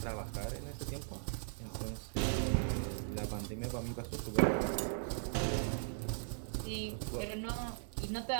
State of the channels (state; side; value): silent; left; digital silence